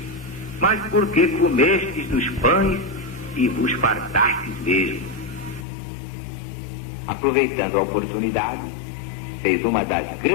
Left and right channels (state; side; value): drops out; right; at 5.7 s